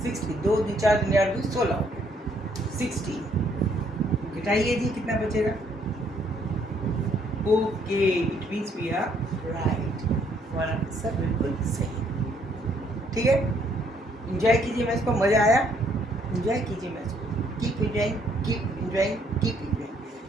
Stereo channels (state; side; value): normal; both; correlation 0.68